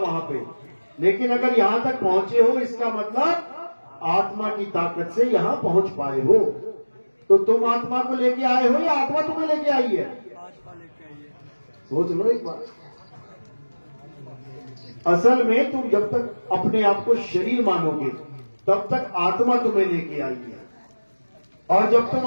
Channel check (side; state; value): both; inverted; correlation -1.00